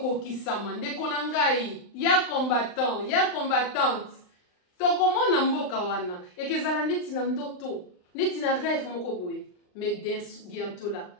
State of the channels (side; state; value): right; late; 39 ms